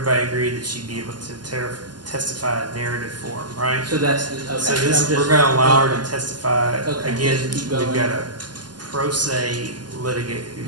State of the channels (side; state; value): left; late; 0.70 ms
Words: agreed that she'd be able to testify in narrative form, right? So that's, okay. So this, we're gonna allow her to testify. Again, we've got a pro se litigant